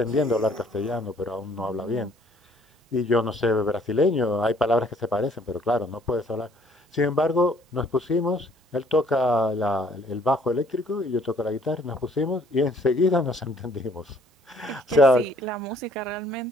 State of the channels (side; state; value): both; normal; correlation 0.60